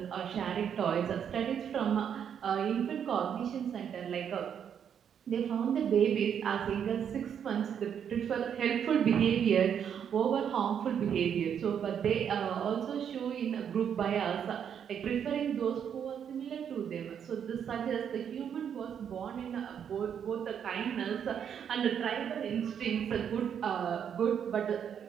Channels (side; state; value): left; quieter; 8.3 dB